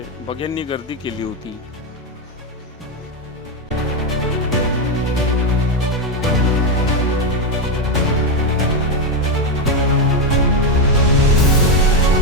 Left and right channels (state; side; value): normal; both; correlation 0.06